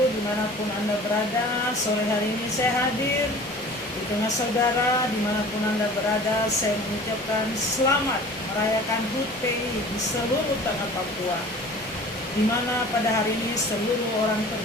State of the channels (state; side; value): normal; both; correlation 0.44